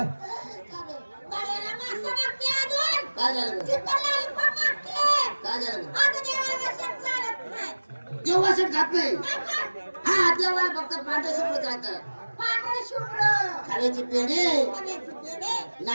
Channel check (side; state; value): both; inverted; correlation -1.00